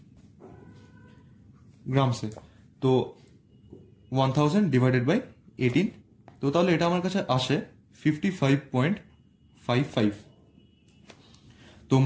গ্রামসে। তো 1000 ডিভাইডেড বাই 18, তো তাহলে এটা আমার কাছে আসে 55.55। তো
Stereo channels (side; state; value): both; identical; correlation 1.00